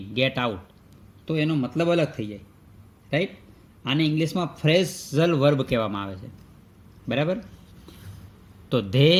ગેટ આઉટ, તો એનો મતલબ અલગ થઈ જાય, રાઈટ. આને ઇંગ્લિશમાં ફ્રેઝલ વર્બ કહેવામાં આવે છે, બરાબર. તો they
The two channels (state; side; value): identical; both; correlation 1.00